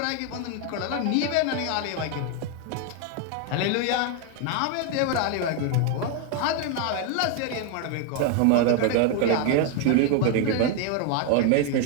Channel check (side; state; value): both; different; correlation 0.01